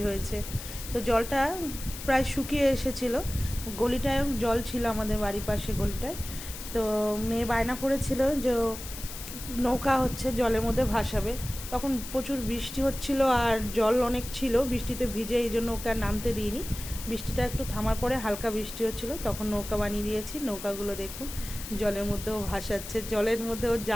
হয়েছে। তো জলটা প্রায় শুকিয়ে এসেছিলো। গলিটায় জল ছিল, আমাদের বাড়ির পাশে গলিটায়। তো মেয়ে বায়না করেছিল যে নৌকা হচ্ছে জলের মধ্যে ভাসাবে। তখন প্রচুর বৃষ্টি হচ্ছিল আর জল অনেক ছিল, বৃষ্টিতে ভিজে, এই জন্য ওকে আর নামতে দিইনি। বৃষ্টিটা একটু থামার পরে হালকা বৃষ্টি হচ্ছিল, তখন নৌকা বানিয়ে দিয়েছি। নৌকাগুলো দেখুন জলের মধ্যেও ভাসাচ্ছে, জলের মধ্যেও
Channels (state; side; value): noise; left; hiss, 11 dB below the sound